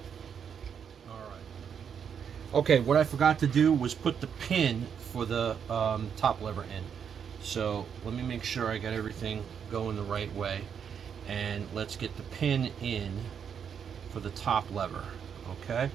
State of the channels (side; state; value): left; quieter; 7.6 dB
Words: Okay, what I forgot to do was put the pin for the top lever in. So let me make sure I got everything going the right way. And let's get the pin in for the top lever. Okay.